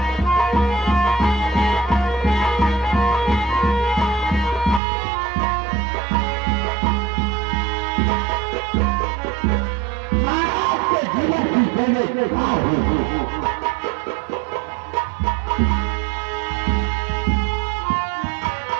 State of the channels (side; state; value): left; drops out; at 4.8 s